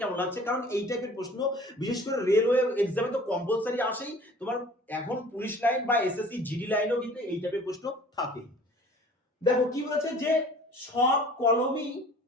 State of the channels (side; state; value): both; normal; correlation 0.48